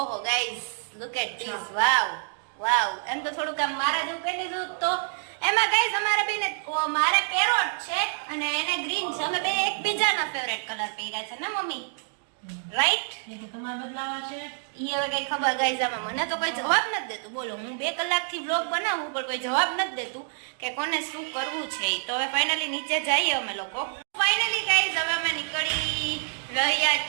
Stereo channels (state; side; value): silent; left; digital silence